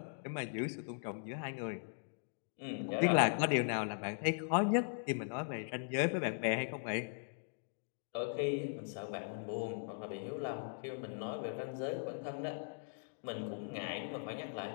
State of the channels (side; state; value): right; silent; digital silence